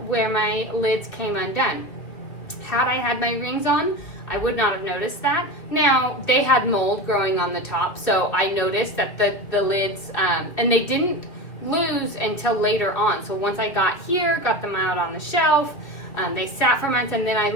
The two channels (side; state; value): right; late; 2.4 ms